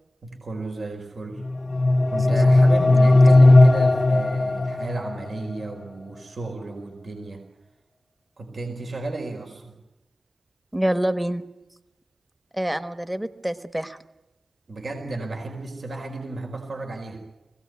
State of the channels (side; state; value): both; normal; correlation 0.98